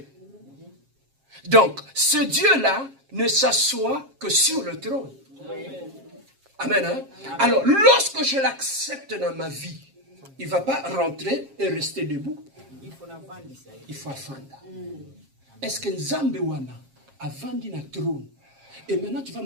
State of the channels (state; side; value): late; left; 7.4 ms